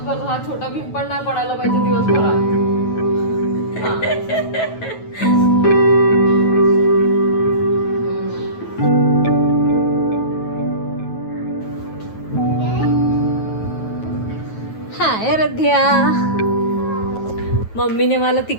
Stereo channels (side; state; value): right; late; 9.2 ms